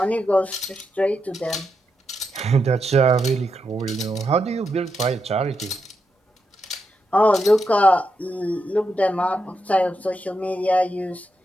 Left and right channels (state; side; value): normal; both; correlation 0.84